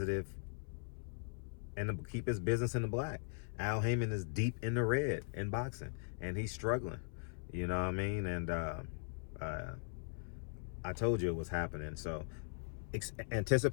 and keep his business in the black. Al Haymon is deep in the red in boxing, and he's struggling. You know what I mean? And I told you it was happening. So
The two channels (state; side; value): silent; right; 51 dB below the other